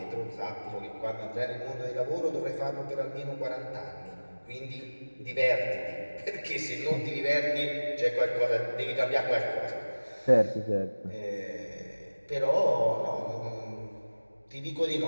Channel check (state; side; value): inverted; both; correlation -1.00